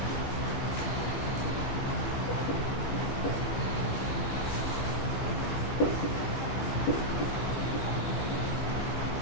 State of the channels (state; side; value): late; right; 15 ms